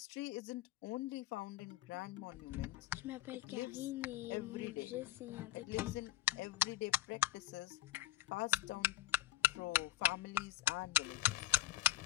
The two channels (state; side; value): quieter; right; 15.2 dB